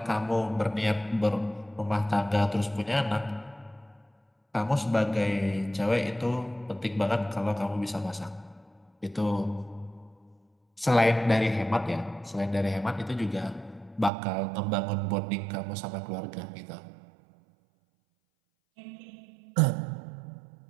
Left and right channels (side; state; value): left; drops out; at 14.1 s